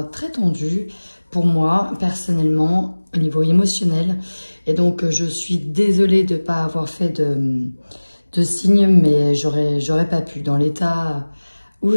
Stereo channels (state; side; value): inverted; both; correlation -1.00